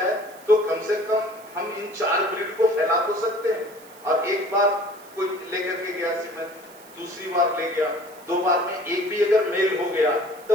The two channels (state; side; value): noise; right; hiss, 23 dB below the sound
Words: तो कम से कम हम इन 4 ब्रीड को फैला तो सकते हैं, और एक बार कोई लेकर के गया सीमन, दूसरी बार ले गया, 2 बार में एक भी अगर मेल हो गया